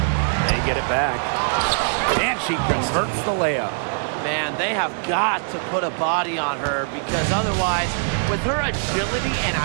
They get it back. And she converts the layup. Man, they have got to put a body on her because otherwise, with her agility and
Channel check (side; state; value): left; silent; 63 dB below the other